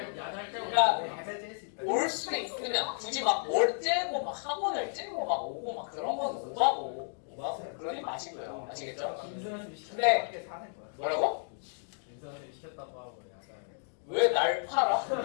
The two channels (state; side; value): silent; right; 56 dB below the other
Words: 그러니까 올 수 있으면 굳이 막 뭘 째고 막 학원을 째고 막 오고 막 그런 건 오바고 그러지 마시고요, 아시겠죠? 근데 뭐라고? 김선생님 시켰다고 하고 야자. 왜 날 팔아?